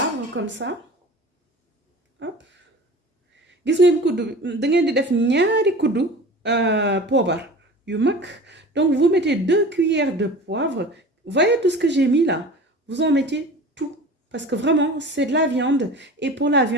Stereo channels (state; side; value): normal; both; correlation 0.38